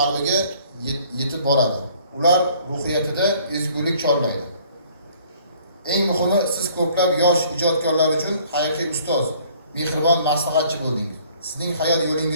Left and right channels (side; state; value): both; inverted; correlation -0.57